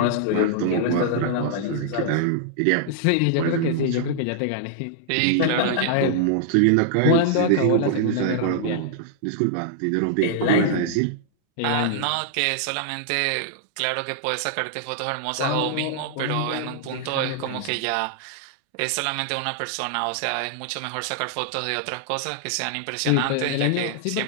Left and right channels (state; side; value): different; both; correlation -0.01